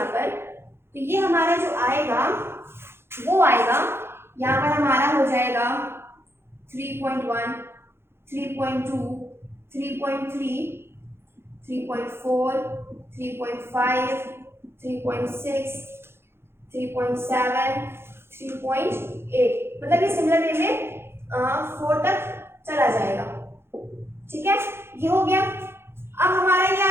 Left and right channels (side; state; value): left; late; 0.12 ms